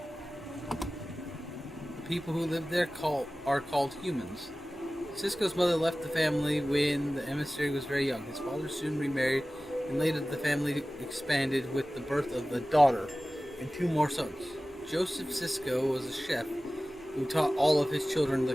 The people who live there are called humans. Sisko's mother left the family when the emissary was very young. His father soon remarried, and later the family expanded with the birth of a daughter and 2 more sons. Joseph Sisko was a chef who taught all of his children the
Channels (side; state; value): both; normal; correlation 0.97